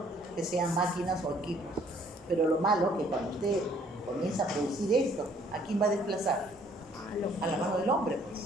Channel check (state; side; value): noise; right; hum, 30 dB below the sound